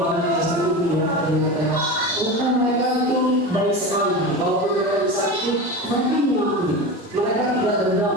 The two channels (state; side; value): normal; both; correlation 0.26